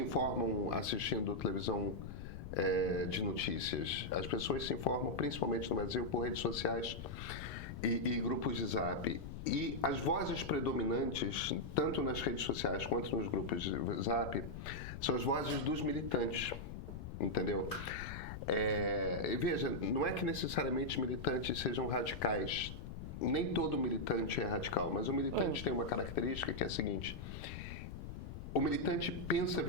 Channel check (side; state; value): left; noise; rumble, 9 dB below the sound